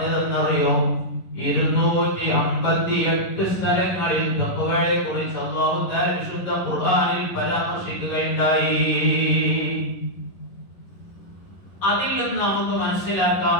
258 സ്ഥലങ്ങളിൽ തഖ്വയെ കുറിച്ച് അല്ലാഹു തആല വിശുദ്ധ ഖുർആനിൽ പരാമർശിക്കുകയുണ്ടായി. അതിൽ നിന്ന് നമുക്ക് മനസ്സിലാക്കാം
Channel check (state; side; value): late; right; 11 ms